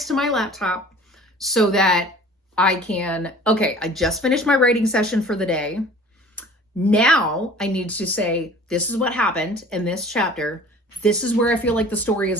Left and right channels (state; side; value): normal; both; correlation 0.46